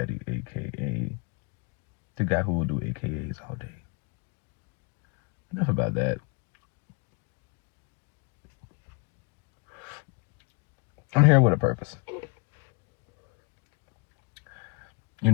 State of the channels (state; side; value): quieter; right; 31.5 dB